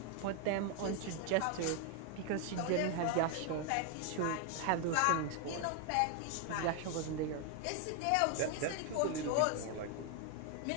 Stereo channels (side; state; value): both; different; correlation 0.01